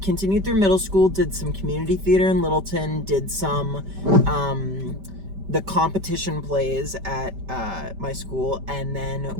continued through middle school, did some community theater in Littleton, did some the competition plays at my school, and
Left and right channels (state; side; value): late; left; 5.1 ms